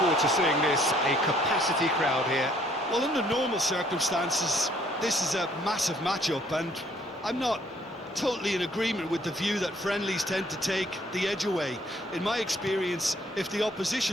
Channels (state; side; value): normal; both; correlation 0.63